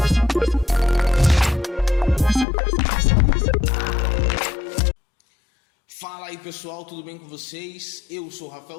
Fala aí pessoal, tudo bem com vocês? Eu sou o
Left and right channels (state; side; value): drops out; right; at 2.5 s